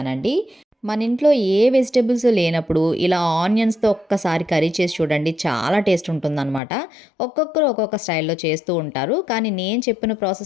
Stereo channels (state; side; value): drops out; right; at 6.6 s